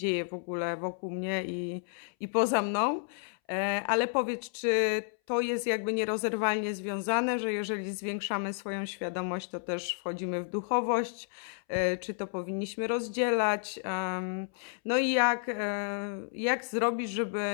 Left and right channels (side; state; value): right; silent; 57 dB below the other